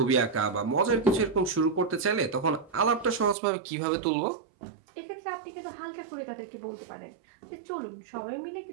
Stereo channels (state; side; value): drops out; left; at 3.4 s